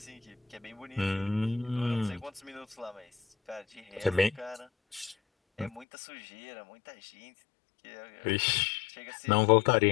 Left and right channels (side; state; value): right; drops out; at 5.9 s